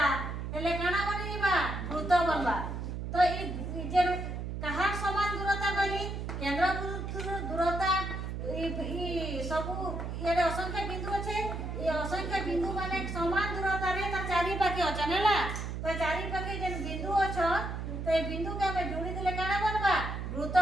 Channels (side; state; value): right; noise; hum, 5 dB below the sound